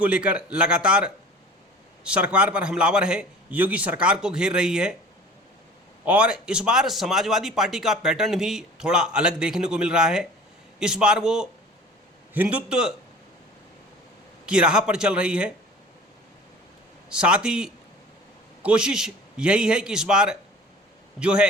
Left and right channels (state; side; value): normal; both; correlation 0.43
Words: लेकर लगातार सरकार पर हमलावर है, योगी सरकार को घेर रही है और इस बार समाजवादी पार्टी का पैटर्न भी थोड़ा अलग देखने को मिल रहा है। इस बार वो हिंदुत्व की राह पर चल रही है। साथ ही कोशिश यही है कि इस बार जो है